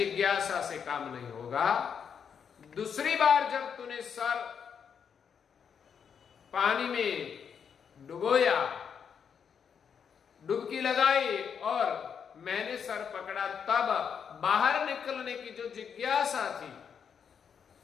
से काम नहीं होगा। दूसरी बार जब तूने सर पानी में डुबोया, डुबकी लगाई और मैंने सर पकड़ा, तब बाहर निकलने की जो जिज्ञासा थी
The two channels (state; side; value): quieter; right; 7.2 dB